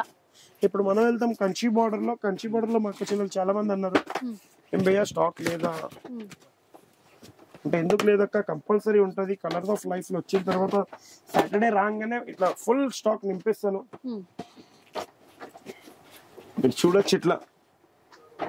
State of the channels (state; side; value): identical; both; correlation 1.00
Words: ఇప్పుడు మనం వెళ్తాం కంచి బార్డర్ లో. కంచి బార్డర్ లో మా అక్క చెల్లెలు చాలా మంది అన్నారు ఎంబయ్య స్టాక్ లేదా అంటే, ఎందుకు లేదక్క కంపల్సరీ ఉంటది. కలర్స్ ఆఫ్ లైఫ్ లో వచ్చిన తర్వాత సాటర్డే రాగానే ఇట్లా ఫుల్ స్టాక్ నింపేస్తాను. మీరు చూడొచ్చు ఇట్లా